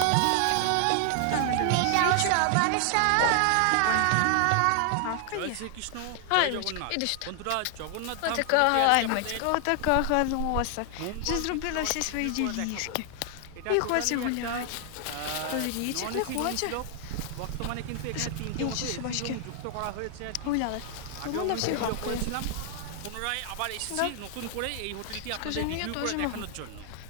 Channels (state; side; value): different; both; correlation 0.00